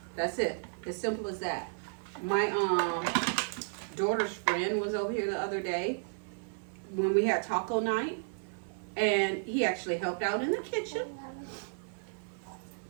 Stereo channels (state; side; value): silent; left; 56 dB below the other